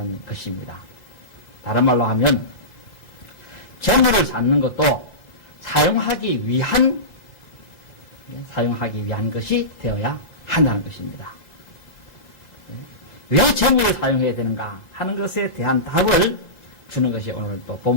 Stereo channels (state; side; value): late; right; 5.7 ms